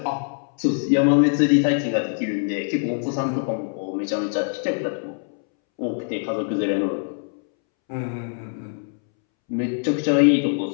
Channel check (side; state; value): right; silent; 63 dB below the other